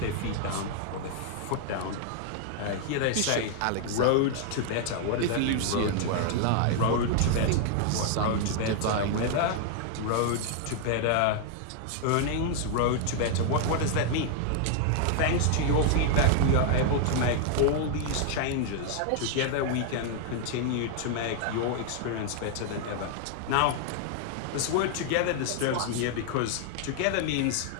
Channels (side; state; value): both; different; correlation 0.00